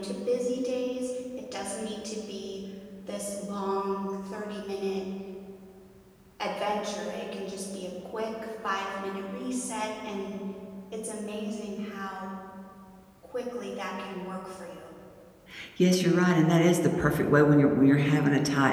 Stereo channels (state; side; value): identical; both; correlation 1.00